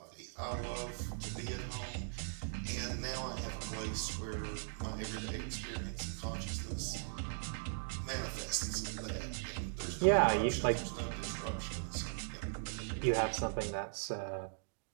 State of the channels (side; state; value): left; silent; digital silence